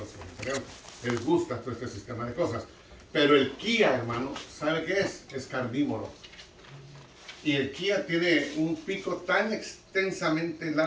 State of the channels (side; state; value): both; identical; correlation 1.00